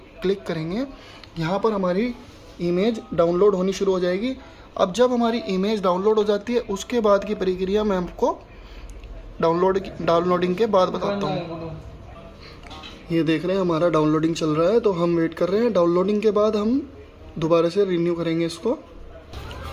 क्लिक करेंगे, यहाँ पर हमारी इमेज डाउनलोड होनी शुरू हो जाएगी। अब जब हमारी इमेज डाउनलोड हो जाती है उसके बाद की प्रक्रिया मैं आपको डाउनलोडिंग के बाद बताता हूँ। ये देख रहे हैं हमारा डाउनलोडिंग चल रहा है, तो हम वेट कर रहे हैं। डाउनलोडिंग के बाद हम दोबारा से रिन्यू करेंगे इसको।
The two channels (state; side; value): identical; both; correlation 1.00